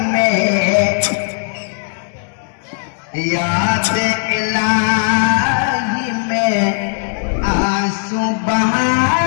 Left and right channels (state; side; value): silent; right; 58 dB below the other